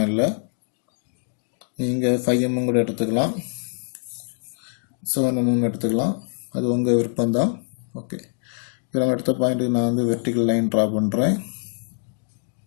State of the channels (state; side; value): silent; right; digital silence